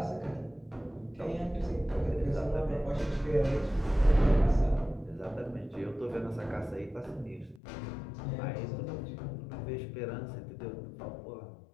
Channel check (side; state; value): right; drops out; at 7.6 s